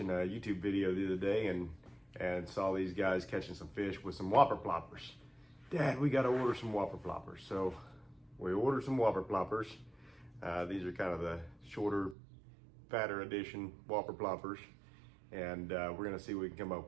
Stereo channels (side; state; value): left; drops out; at 12.2 s